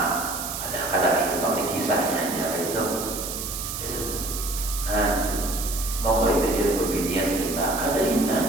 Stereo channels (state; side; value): noise; right; hiss, 6 dB below the sound